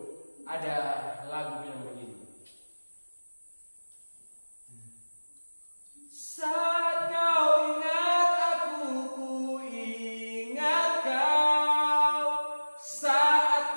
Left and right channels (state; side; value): inverted; both; correlation -1.00